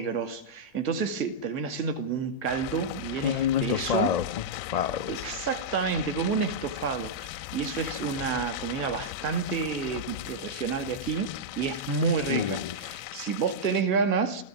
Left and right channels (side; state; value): right; late; 1.6 ms